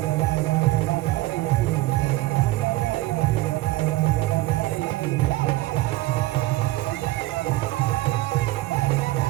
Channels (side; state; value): left; quieter; 18.1 dB